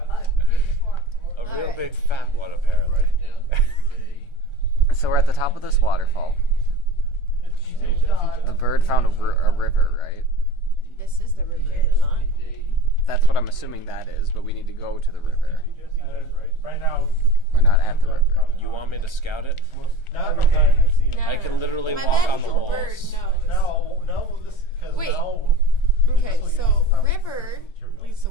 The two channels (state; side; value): late; right; 1.4 ms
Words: A real big fat one, apparently. So we're at the top of this waterfall. The bird found a river, right? This is the river, is it not? That's what I'm assuming that is, but we need to go to the river. Right now, We're not at the river. You want me to scout it? Not No, I can literally My walk on the magical walls. bird knows. No, this because Wait. now. Okay, so river leads to